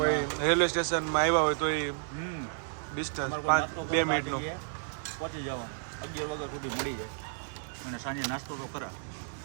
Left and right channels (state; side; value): silent; left; digital silence